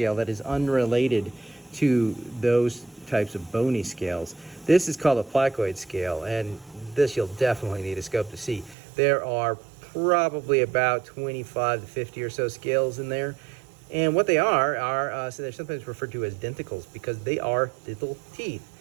that is unrelated to those types of bony scales. This is called a placoid scale, and this you'll definitely need a scope to see. There are probably about 25 to 50 or so scales in there, and what they are so they're sometimes referred to as denticles because they are little teeth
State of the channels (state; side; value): drops out; left; at 8.8 s